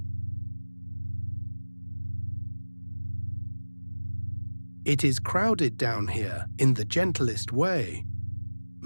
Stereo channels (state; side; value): inverted; both; correlation -1.00